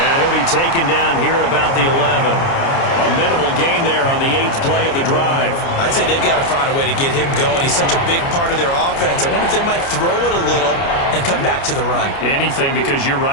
he'll be taken down here at about the 11. A minimal gain there on the 8th play of the drive. I'd say they've got to find a way to get him going. He's such a big part of their offense. I wonder if they might throw it a little and come back to the run. Anything, because you're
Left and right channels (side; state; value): right; late; 29 ms